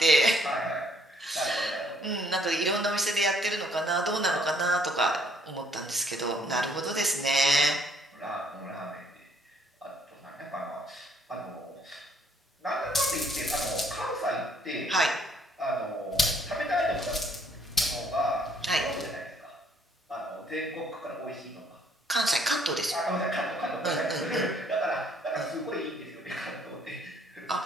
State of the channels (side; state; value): both; normal; correlation 0.64